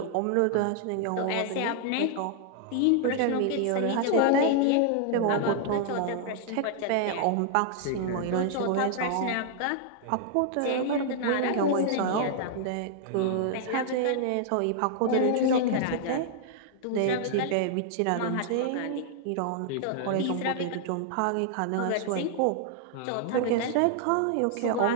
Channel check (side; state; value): both; different; correlation -0.01